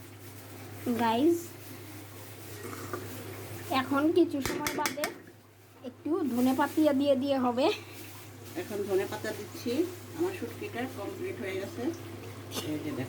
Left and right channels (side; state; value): both; identical; correlation 1.00